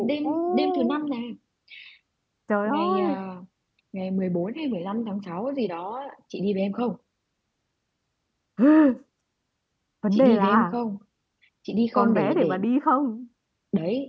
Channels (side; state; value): both; identical; correlation 1.00